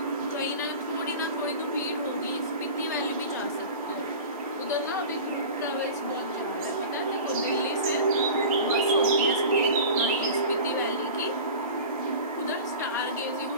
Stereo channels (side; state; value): both; inverted; correlation -0.35